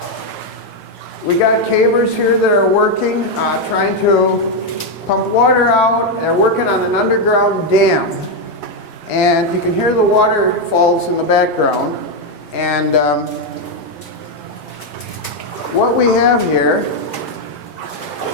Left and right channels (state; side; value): normal; both; correlation 0.04